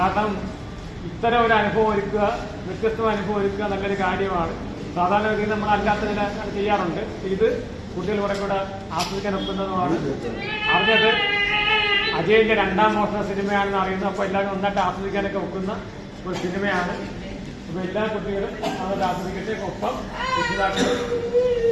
ഇത്തരം ഒരു അനുഭവം ഒരുക്കുക, വ്യത്യസ്തമായ അനുഭവം ഒരുക്കുക നല്ലൊരു കാര്യമാണ്. സാധാരണ രീതിയിൽ നമ്മൾ അല്ലാത്തതിനെ ചെയ്യാറുണ്ട്. ഇത് കുട്ടികൾ കുറെ കൂടെ ആസ്വദിക്കാൻ ഒക്കുന്നതുമാണ്. അറിഞ്ഞത് അജയൻ്റെ 2ാം മോഷണ സിനിമയാണെന്ന് അറിയുന്നത്. അപ്പോൾ എല്ലാവരും നന്നായിട്ട് ആസ്വദിക്കാനൊക്കെ ഒക്കുന്ന ഒരു സിനിമയാണ്. അപ്പോൾ എല്ലാ കുട്ടികളും അത് ആസ്വദിക്കട്ടെ. ഒപ്പം രക്ഷിതാക്കളും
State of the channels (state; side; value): identical; both; correlation 1.00